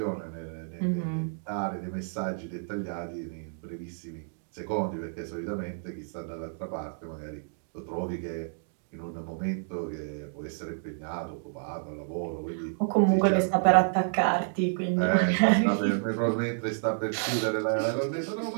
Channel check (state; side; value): silent; left; digital silence